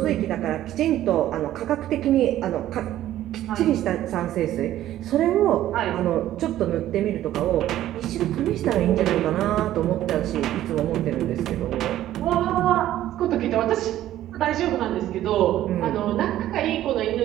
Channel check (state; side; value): quieter; left; 13.2 dB